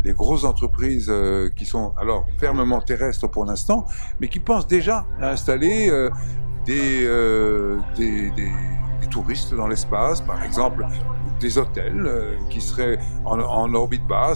grosses entreprises qui sont alors fermement terrestres pour l'instant, mais qui pensent déjà à installer des touristes dans l'espace, par exemple des hôtels qui seraient en orbite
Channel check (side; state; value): both; inverted; correlation -1.00